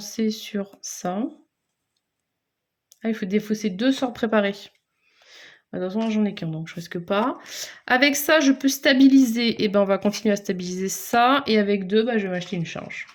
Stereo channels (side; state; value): both; identical; correlation 1.00